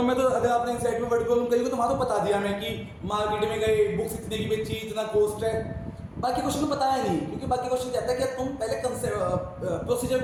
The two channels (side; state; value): both; identical; correlation 1.00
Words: में तो अगर आपने इस साइड में वर्ड कॉलम करी तो वहां तो बता दिया मैं कि मार्केट में गए, बुक्स इतने की बेची, इतना कॉस्ट है। बाकी क्वेश्चन में बताया नहीं, क्योंकि बाकी क्वेश्चन कहता है कि तुम पहले प्रोसीजर